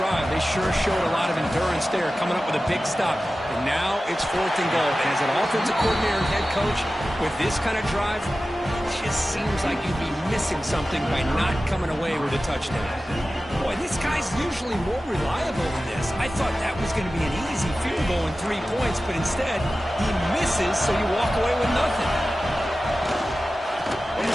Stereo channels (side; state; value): both; normal; correlation 0.95